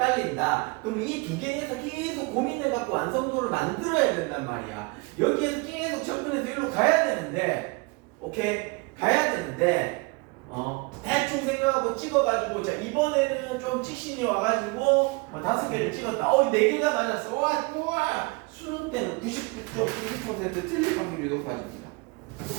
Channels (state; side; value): quieter; left; 27.7 dB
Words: 그럼 이 2개에서 계속 고민해갖고 완성도를 만들어야 된단 말이야. 여기에서 계속 접근해서 이리로 가야 되는데, 오케이? 가야 되는데, 대충 생각하고 찍어가지고, 자, 이번에는 좀 찍신이 와가지고, 5개를 찍었다. 4개가 맞았어. 우와! 수능 때는 99.99% 틀릴 확률이 높아집니다.